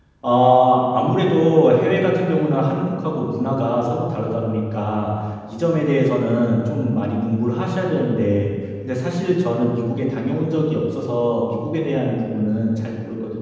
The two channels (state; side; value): identical; both; correlation 1.00